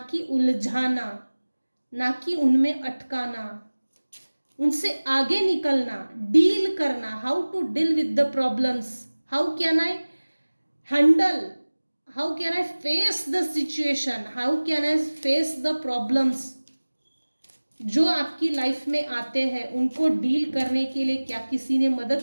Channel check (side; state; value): both; inverted; correlation -1.00